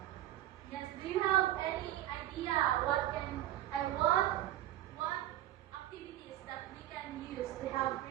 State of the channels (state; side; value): quieter; left; 13.9 dB